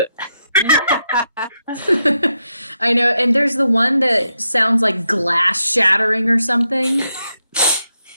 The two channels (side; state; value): both; inverted; correlation -0.83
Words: I know, and there's the one that sounds like glass shattering or something.